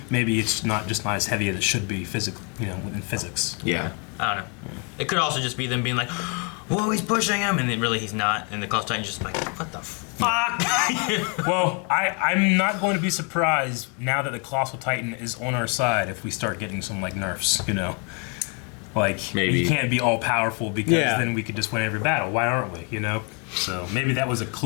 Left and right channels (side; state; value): right; quieter; 35.9 dB